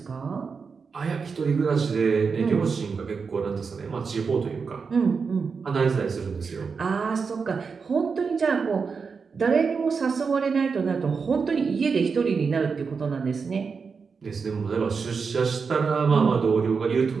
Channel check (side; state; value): left; quieter; 5.3 dB